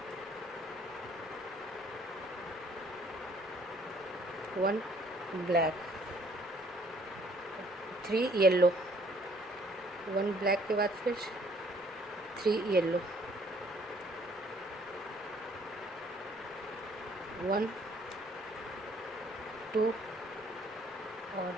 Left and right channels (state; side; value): normal; both; correlation 0.61